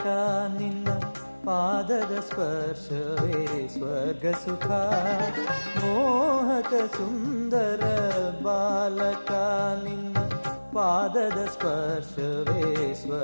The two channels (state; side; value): inverted; both; correlation -1.00